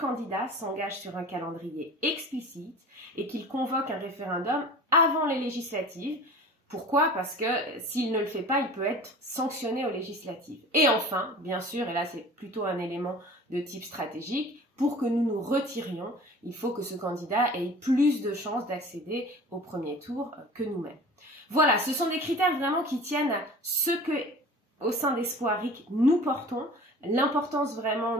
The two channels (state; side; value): normal; both; correlation 0.41